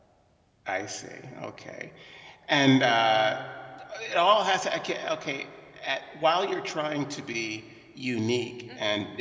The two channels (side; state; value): both; identical; correlation 1.00